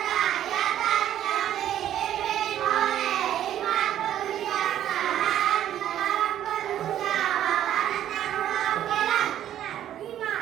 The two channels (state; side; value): quieter; left; 11.4 dB